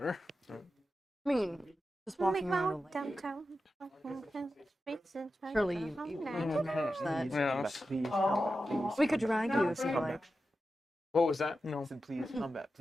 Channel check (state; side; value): normal; both; correlation 0.91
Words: I mean, just Make walking my around. way downtown. Surely you can manage that. Yeah. Please, combat, please. We could drag you if you like. what was that? No. Listen, please, combat,